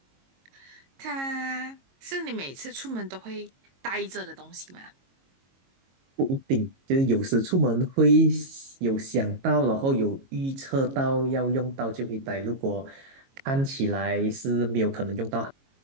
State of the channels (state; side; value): late; left; 22 ms